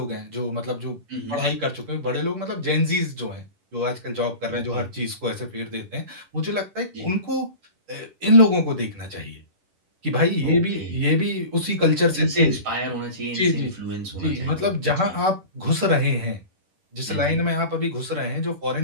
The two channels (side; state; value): left; late; 10 ms